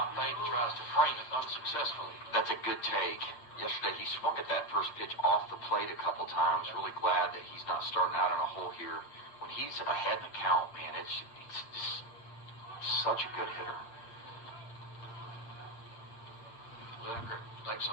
Thaden tries to frame it unsuccessfully. That's a good take. Yesterday he swung at that first pitch off the plate a couple times. Really glad that he's not starting out on a hole here. When he's ahead in the count, man, it's just such a good hitter. Lineker takes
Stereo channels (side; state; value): right; late; 8.6 ms